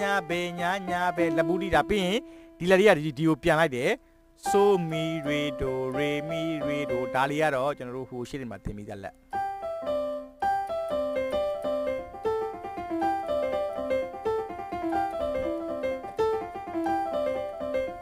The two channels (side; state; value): both; identical; correlation 1.00